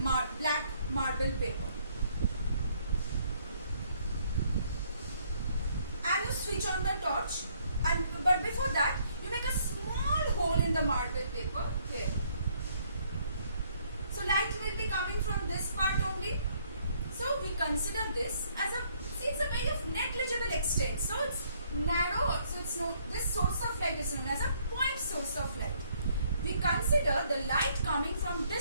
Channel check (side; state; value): both; inverted; correlation -0.66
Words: black marble paper. And you switch on the torch. But before that, you make a small hole in the marble paper here. So light will be coming from this part only. So we consider this as it's a very of negligible extent. So it's narrow. So it's this source of light is known as a point source of light. We consider the light coming from